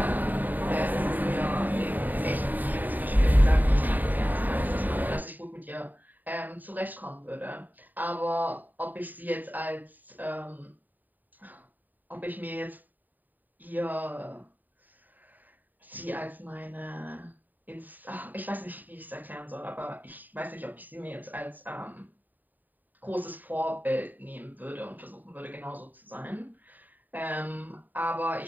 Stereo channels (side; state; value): left; late; 0.086 ms